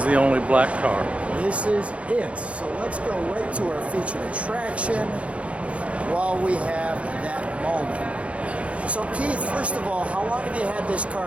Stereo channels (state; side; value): late; left; 0.063 ms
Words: the only black car. This is it. So let's go right to our featured attraction while we have that moment. So Keith, first of all, how long have you had this